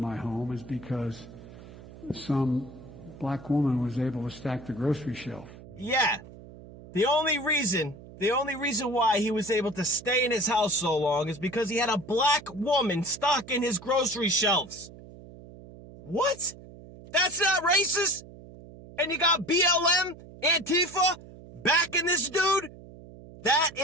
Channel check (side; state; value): right; noise; hum, 18 dB below the sound